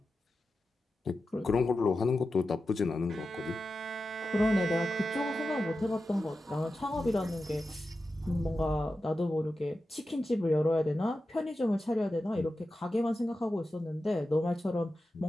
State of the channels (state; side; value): normal; both; correlation 0.92